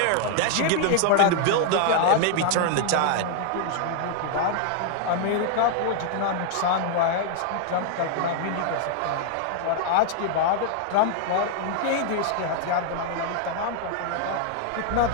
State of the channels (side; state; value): both; different; correlation 0.00